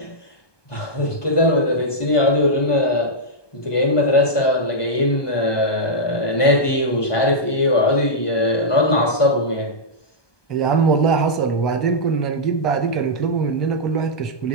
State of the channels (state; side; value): late; right; 1.2 ms